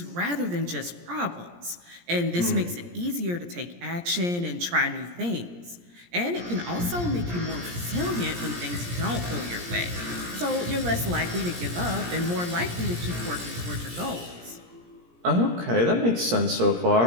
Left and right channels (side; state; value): left; late; 17 ms